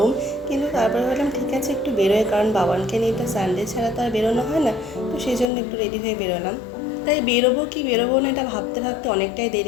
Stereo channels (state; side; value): drops out; right; at 5.5 s